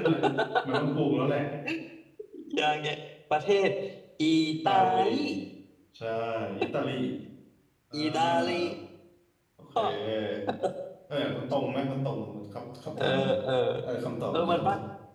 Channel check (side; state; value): both; identical; correlation 1.00